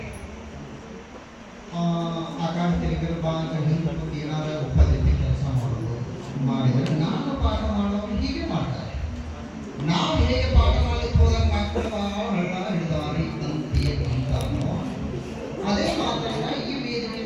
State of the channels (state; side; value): identical; both; correlation 1.00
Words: ಆಕಾಶ ತೆಗೆದಿರು ಬಾ ಅಂತ ಹಿಂದೆ ಏನಾದರೂ ಉಪದೇಶ ಕೆಲಸ ಮಾಡಿದರೆ ನಾನು ಪಾಠ ಮಾಡೋರು ಹೀಗೆ ಮಾಡ್ತಾರೆ. ನಾವು ಹೇಗೆ ಪಾಠ ಮಾಡಲಿಕ್ಕೆ ಹೋದಾಗ ಮಕ್ಕಳು ಹಳ್ಳ ಹಿಡಿದಾರಿ ಅಂತೀಯ ಅಂತಾನೋ ಅದೇ ಮಾತನ್ನ ಈ ವೇದಿಕೆ